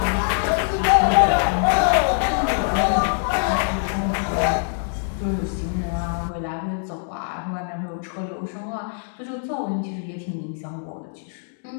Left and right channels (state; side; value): silent; right; digital silence